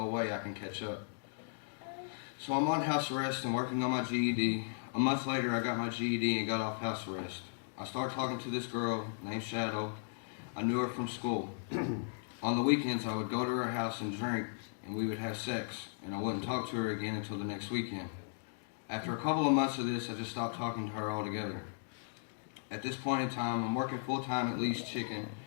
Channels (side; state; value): right; silent; digital silence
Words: way I can catch up. So I'm on house arrest and working on my GED. A month later, I got my GED and got off house arrest. I started talking to this girl named Shadow. I knew her from school. On the weekends, I would go to her house and drink, and we would have sex, and I wouldn't talk to her again until the next weekend. After a couple of months of this, I just stopped talking to her altogether. At this point in time, I'm working full-time at Lee's Chicken